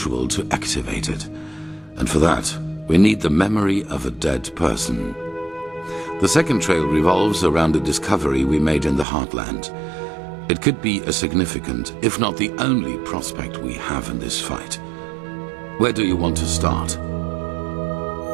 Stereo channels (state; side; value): drops out; left; at 9.1 s